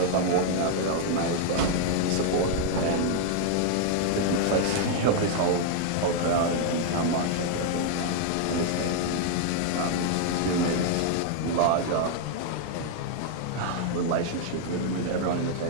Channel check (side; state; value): both; different; correlation 0.00